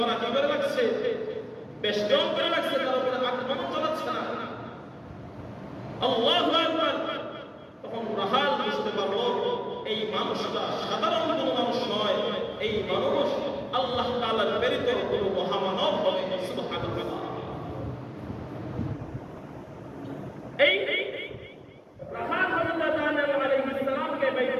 কি করে রাখছে, বেষ্টন করে রাখছে, তার উপরে আক্রমণ চালাচ্ছে না। আল্লাহু আকবার! তখন রাখাল বুঝতে পারলো এই মানুষটা সাধারণ কোনো মানুষ নয়, এই মানুষ আল্লাহ তাআলার প্রেরিত কোনো মহামানব হবে। সুবহানাল্লাহ! এই রাখাল হযরত দানিয়েল আলাইহিস সালামকে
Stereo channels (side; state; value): both; identical; correlation 1.00